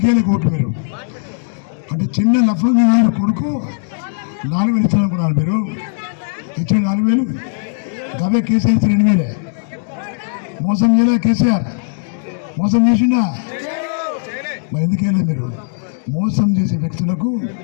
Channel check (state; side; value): silent; right; digital silence